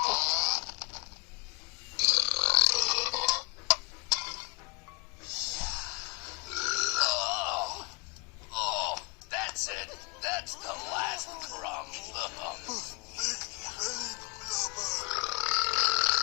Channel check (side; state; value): right; quieter; 30.3 dB